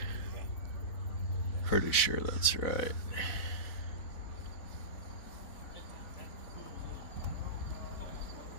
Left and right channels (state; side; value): late; right; 4.1 ms